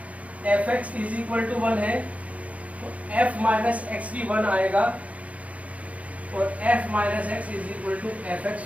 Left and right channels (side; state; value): left; late; 0.067 ms